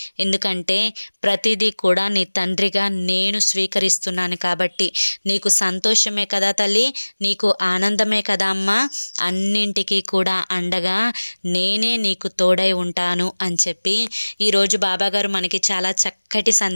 ఎందుకంటే ప్రతిదీ కూడా నీ తండ్రిగా నేను స్వీకరిస్తున్నాను కాబట్టి నీకు సంతోషమే కదా తల్లి, నీకు ఆనందమే కదా అమ్మా. అన్నింటికీ కూడా అండగా నేనే నీకు తోడై ఉంటాను అని చెప్పి ఈరోజు బాబాగారు మనకి చాలా చక్కటి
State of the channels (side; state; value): both; inverted; correlation -1.00